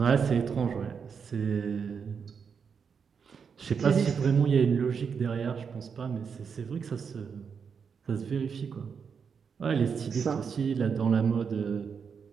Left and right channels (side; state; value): left; quieter; 6.3 dB